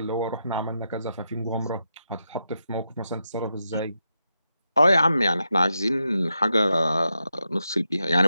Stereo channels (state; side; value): inverted; both; correlation -0.86